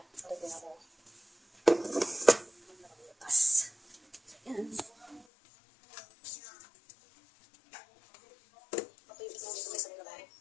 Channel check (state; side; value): drops out; right; at 5.2 s